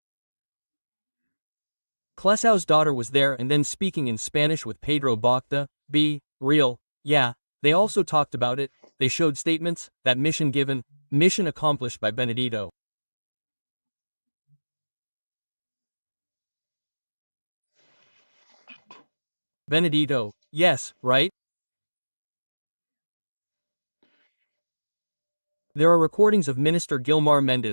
Clesau's daughter was there and then speaking in Spanish with Pedro Bocta, be real, yeah, they also talked about it, they showed statements, that mission given, mission accomplished by Benedito. Benedito, yes, right? There are recordings of Minister Gilmar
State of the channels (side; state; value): both; inverted; correlation -1.00